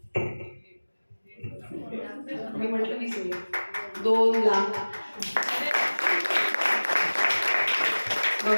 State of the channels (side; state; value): both; inverted; correlation -1.00